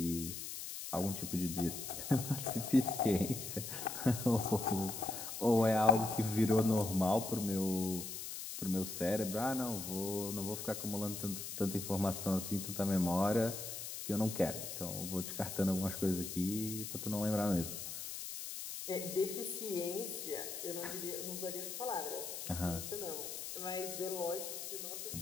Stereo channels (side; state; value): left; noise; hiss, 7 dB below the sound